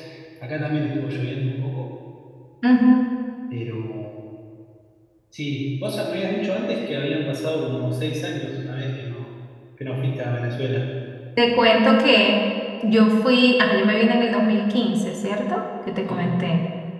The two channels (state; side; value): identical; both; correlation 1.00